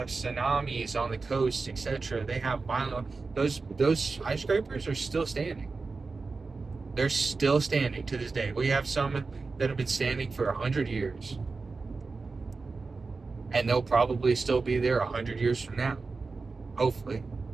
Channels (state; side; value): quieter; left; 4.1 dB